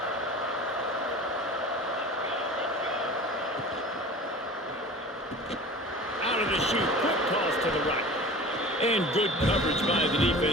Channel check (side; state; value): both; normal; correlation 0.38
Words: Out of the chute, quick toss to the right. And good coverage by the